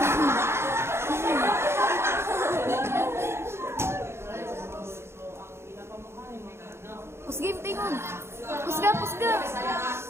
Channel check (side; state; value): left; late; 0.12 ms